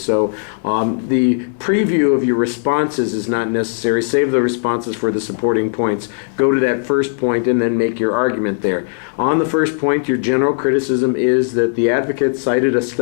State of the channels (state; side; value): silent; right; 68 dB below the other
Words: the preview of your responses is not necessary. Save the responses for the supporting points. Go to that first point and then make your argument there. On the first point, your general criticism is that the advocate cited a